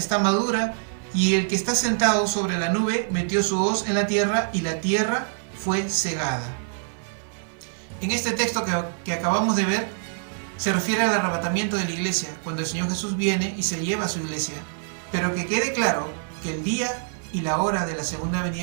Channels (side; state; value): left; silent; 62 dB below the other